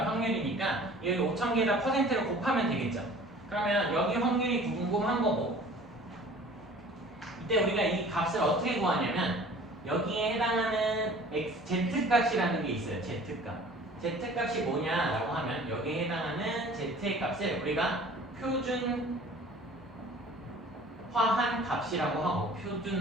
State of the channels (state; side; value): normal; both; correlation 0.47